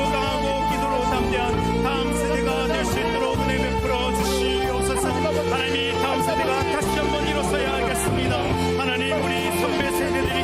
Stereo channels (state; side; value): identical; both; correlation 1.00